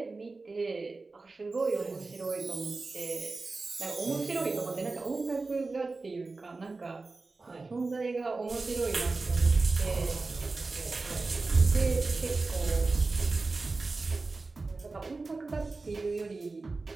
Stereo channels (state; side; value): quieter; left; 3.7 dB